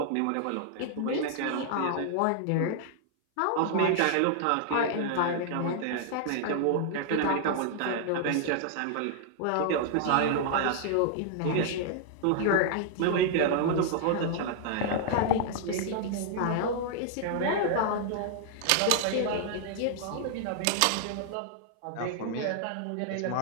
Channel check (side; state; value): both; different; correlation -0.01